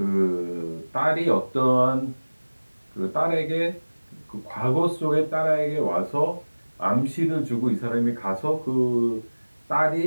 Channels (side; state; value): both; inverted; correlation -1.00